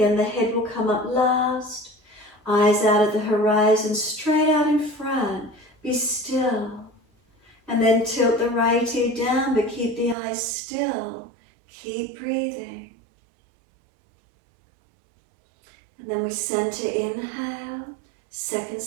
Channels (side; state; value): left; drops out; at 10.2 s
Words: the head will come up last. Eyes out at the horizon, straight out in front. Be still. And then tilt the right ear down, but keep the eyes still. Keep breathing. And then we center, inhale. Second